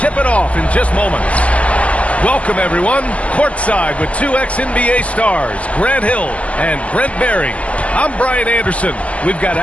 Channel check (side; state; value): right; late; 0.064 ms